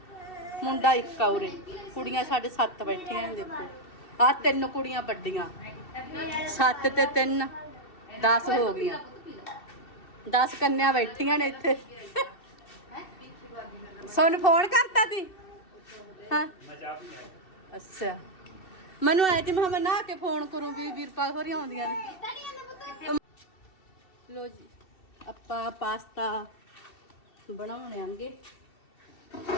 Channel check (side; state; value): right; late; 2.7 ms